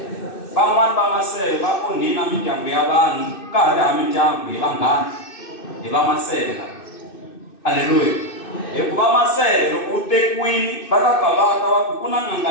van'wani va masele va onhina mindyangu ya vanhu ka ha ri ha mindyangu hi vanghana hi va masele aleluya hikuva masele loko u tekiwini va ta bavaka va ku na n'anga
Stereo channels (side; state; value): right; late; 2.6 ms